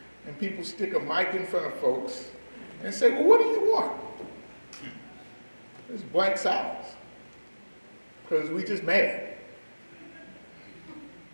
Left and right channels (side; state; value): both; inverted; correlation -1.00